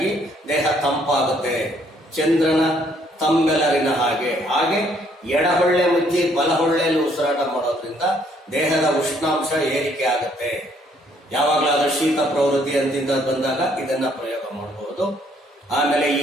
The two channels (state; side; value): normal; both; correlation 0.66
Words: ದೇಹ ತಂಪಾಗುತ್ತೆ, ಚಂದ್ರನ ತಂಬೆಲರಿನ ಹಾಗೆ ಎಡಹೊಳ್ಳೆ ಮುಚ್ಚಿ ಬಲಹೊಳ್ಳೆಯಲ್ಲಿ ಉಸಿರಾಟ ಮಾಡೋದ್ರಿಂದ ದೇಹದ ಉಷ್ಣಾಂಶ ಏರಿಕೆ ಆಗುತ್ತೆ. ಯಾವಾಗಲಾದ್ರೂ ಶೀತ ಪ್ರವೃತ್ತಿ ಅಂತಿಂದ ಬಂದಾಗ ಇದನ್ನ ಪ್ರಯೋಗ ಮಾಡಬಹುದು. ಆಮೇಲೆ